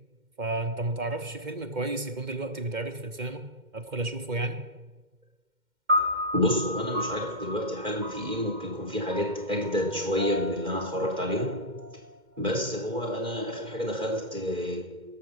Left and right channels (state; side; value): late; left; 2.1 ms